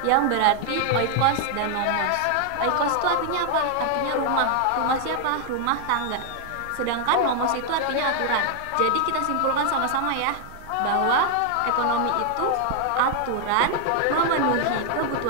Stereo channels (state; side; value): different; both; correlation 0.00